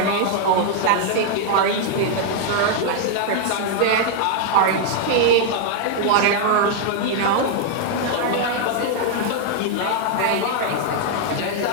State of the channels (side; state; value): both; different; correlation 0.00